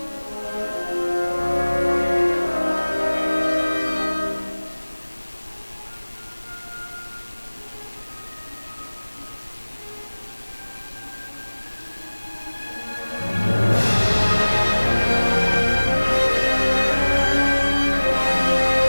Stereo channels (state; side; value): inverted; both; correlation -1.00